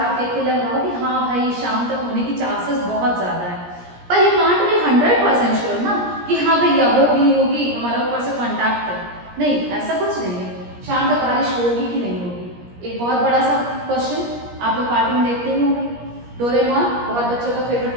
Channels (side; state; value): left; late; 17 ms